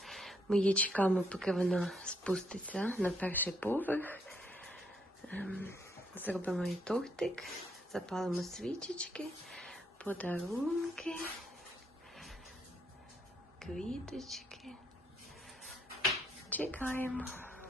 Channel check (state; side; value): normal; both; correlation 0.73